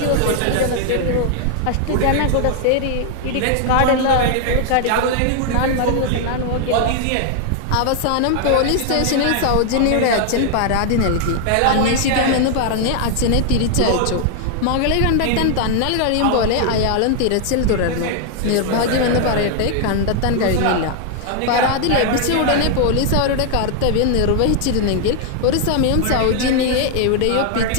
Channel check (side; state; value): both; different; correlation 0.00